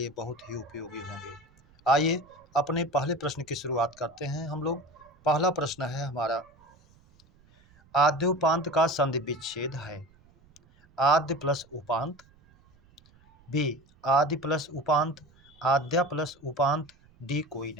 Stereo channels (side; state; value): right; noise; rumble, 29 dB below the sound